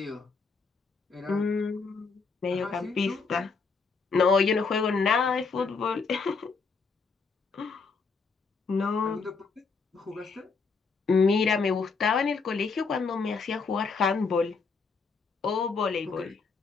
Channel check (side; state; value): right; quieter; 4.8 dB